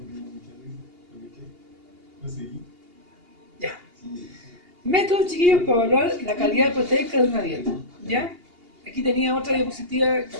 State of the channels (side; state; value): left; late; 2.8 ms